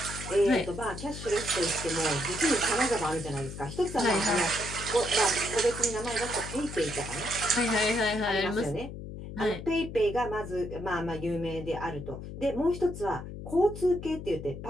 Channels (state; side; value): noise; left; hum, 10 dB below the sound